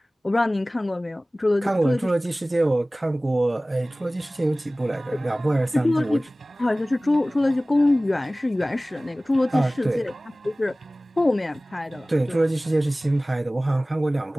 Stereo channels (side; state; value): both; normal; correlation 0.98